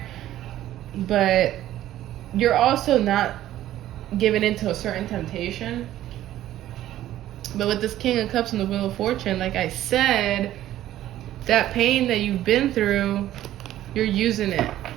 But you're also not giving into a certain temptation. But with this King of Cups and the Wheel of Fortune, like I said, that pain that you've been through, you're using it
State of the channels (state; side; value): quieter; left; 13.3 dB